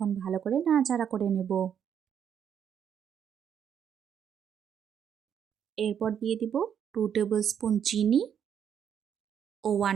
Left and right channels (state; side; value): quieter; left; 8.5 dB